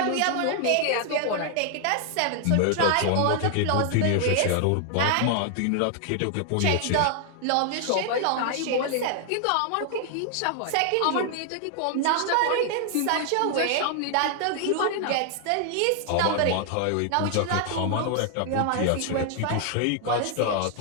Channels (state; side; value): different; both; correlation 0.00